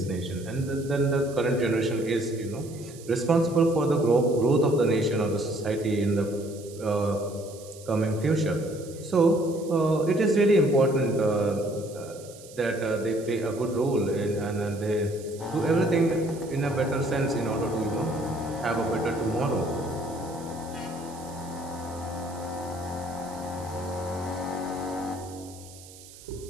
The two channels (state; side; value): noise; right; hiss, 19 dB below the sound